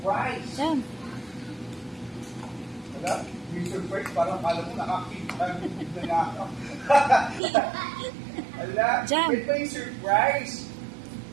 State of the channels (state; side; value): drops out; left; at 7.4 s